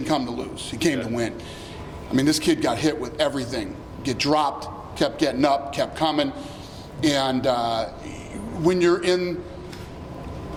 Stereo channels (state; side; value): identical; both; correlation 1.00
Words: come to lose. He came to win. I mean, this kid got hit with everything. Get dropped, kept getting up, kept coming. And when you're in